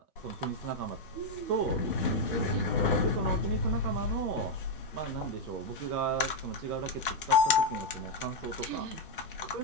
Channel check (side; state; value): both; normal; correlation 0.01